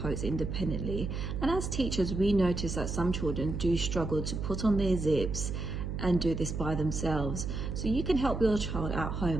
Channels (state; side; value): noise; right; hum, 4 dB below the sound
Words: independently, and as teachers we notice that some children do struggle to put on their zips and do this by themselves. So you can help your child at